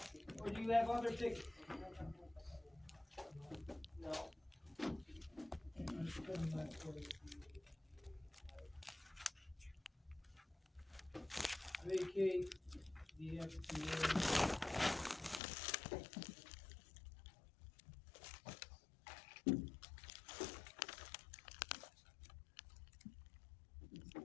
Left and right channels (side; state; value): right; drops out; at 15.4 s